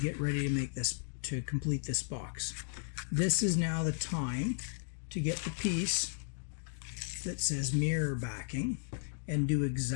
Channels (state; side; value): silent; right; digital silence